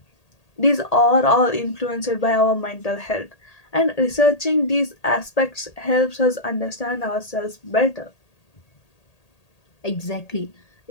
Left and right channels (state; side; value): late; right; 1.8 ms